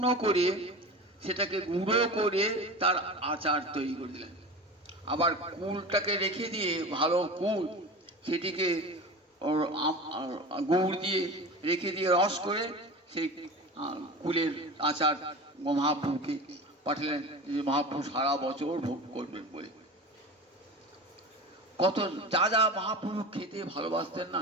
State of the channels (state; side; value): normal; both; correlation 0.31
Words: করে সেটাকে গুঁড়ো করে তার আচার তৈরি করে দিলেন। আবার কুলটাকে রেখে দিয়ে, ভালো কুল, সেটিকে গুড় দিয়ে রেখে দিয়ে রস করে সেই কুলের আচার মহাপ্রভুকে পাঠালেন, যে মহাপ্রভু সারা বছর ভোগ করবেন বলে। কত যা যা মহাপ্রভু খেতে ভালোবাসতেন না,